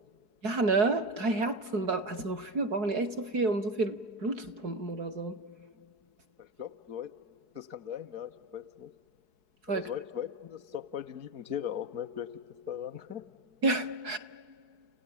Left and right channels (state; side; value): late; left; 4.7 ms